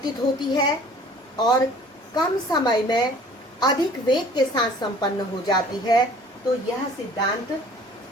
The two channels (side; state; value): both; normal; correlation 0.50